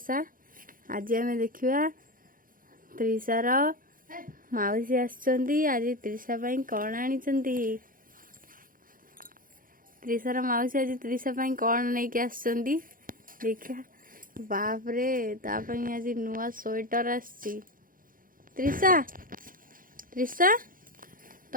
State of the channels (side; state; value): left; late; 0.40 ms